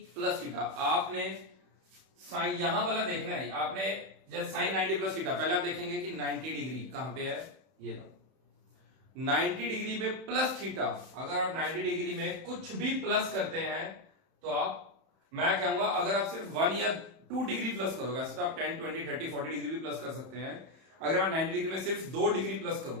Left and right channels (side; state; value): left; late; 31 ms